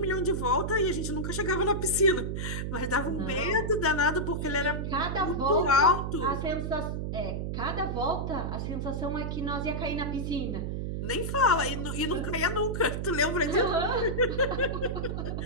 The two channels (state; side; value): noise; right; hum, 3 dB below the sound